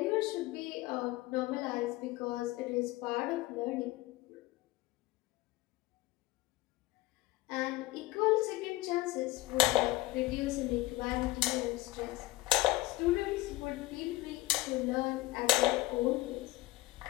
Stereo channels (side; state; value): right; quieter; 19.1 dB